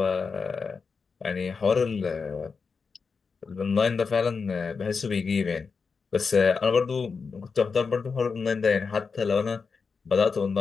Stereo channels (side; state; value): right; quieter; 5.1 dB